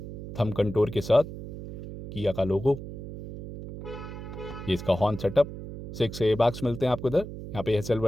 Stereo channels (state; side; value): noise; right; hum, 10 dB below the sound